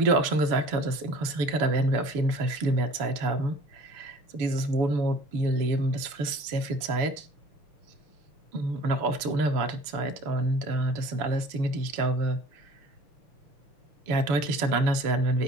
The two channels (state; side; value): late; left; 7.0 ms